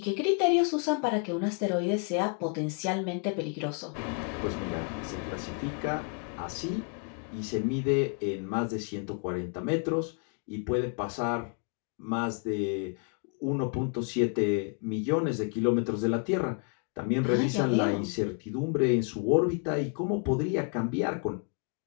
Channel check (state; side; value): quieter; right; 38.4 dB